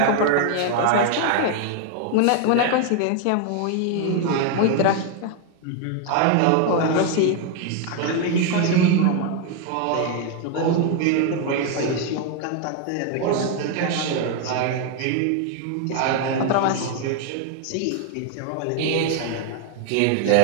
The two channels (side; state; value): both; different; correlation 0.01